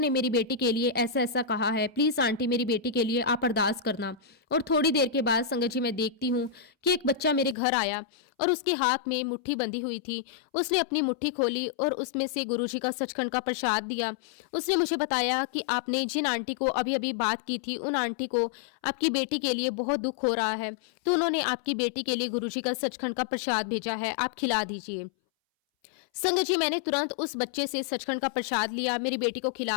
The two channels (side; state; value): right; drops out; at 7.6 s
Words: मेरी बेटी के लिए ऐसा ऐसा कहा है, प्लीज आंटी मेरी बेटी के लिए आप अरदास करना। और थोड़ी देर के बाद संगत जी मैं देखती हूँ कि एक बच्चा मेरे घर आया और उसके हाथ में मुट्ठी बंधी हुई थी। उसने अपनी मुट्ठी खोली और उसमें से गुरुजी का सचखंड का प्रसाद दिया। उसने मुझे बताया कि आपने जिन आंटी को अभी अभी बात की थी उन आंटी को आपकी बेटी के लिए बहुत दुख हो रहा है, तो उन्होंने आपकी बेटी के लिए गुरुजी का सचखंड का प्रसाद भेजा है, आप खिला दीजिए। संगत जी मैंने तुरंत उस बच्चे से सचखंड का प्रसाद लिया, मेरी बेटी को